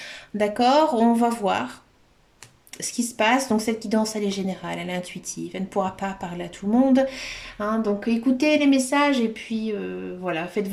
D'accord, on va voir ce qui se passe. Donc cette guidance, elle est générale, elle est intuitive, elle ne pourra pas parler à tout le monde. Hein. Donc écoutez les messages et puis voilà, faites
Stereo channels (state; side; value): identical; both; correlation 1.00